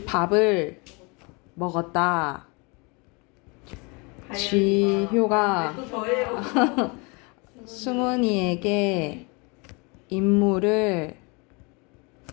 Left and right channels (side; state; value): right; quieter; 29.7 dB